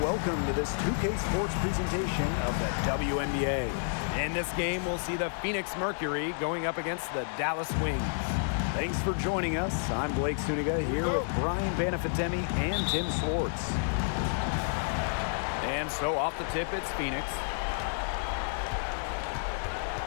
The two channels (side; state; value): right; silent; digital silence